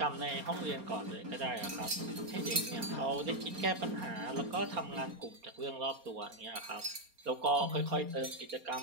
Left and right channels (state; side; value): late; left; 4.3 ms